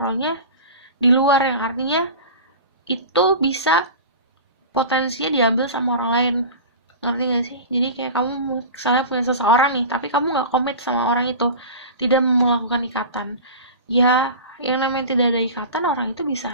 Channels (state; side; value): inverted; both; correlation -0.33